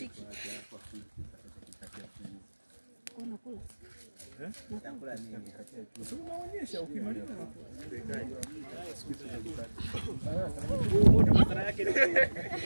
Kuna kula. Nakula nini? Unaonyesha ukimaliza. Madhara yake ni wewe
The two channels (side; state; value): both; inverted; correlation -1.00